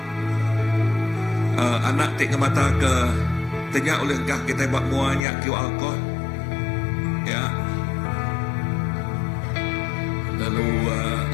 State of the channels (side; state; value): right; drops out; at 5.2 s